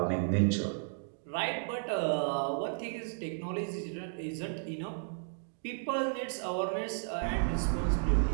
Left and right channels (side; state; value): left; silent; digital silence